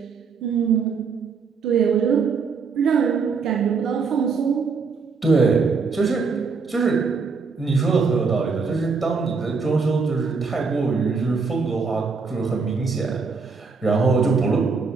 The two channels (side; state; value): left; quieter; 5.0 dB